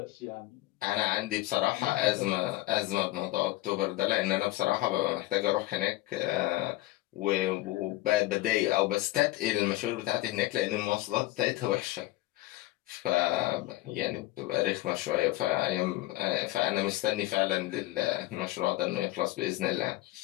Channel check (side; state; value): right; quieter; 17.8 dB